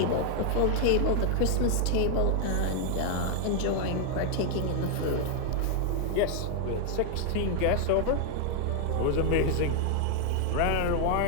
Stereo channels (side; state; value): both; different; correlation 0.00